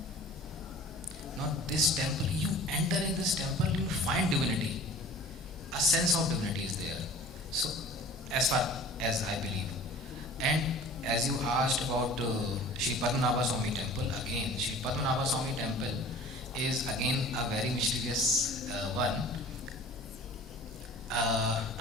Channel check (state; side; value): normal; both; correlation 0.44